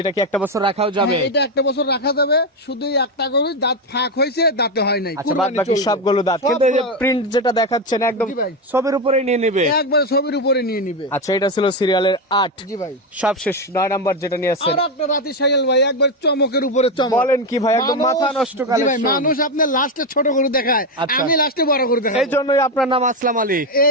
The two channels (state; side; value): normal; both; correlation 0.10